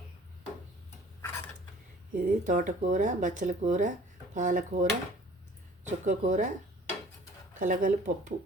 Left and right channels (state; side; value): normal; both; correlation 0.51